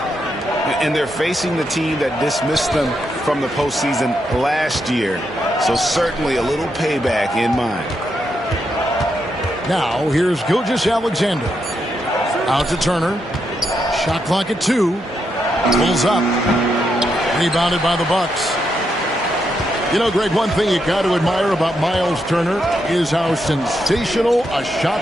And they're facing the team that dismissed them from the postseason last year. So certainly a little payback in mind. Now, here's Gilgeous-Alexander. Out to Turner. Shot clock at 2. Pulls up. Rebounded by the Bucks. You know, Greg, one thing you got to admire about Miles Turner is how sensational a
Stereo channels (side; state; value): both; normal; correlation 0.81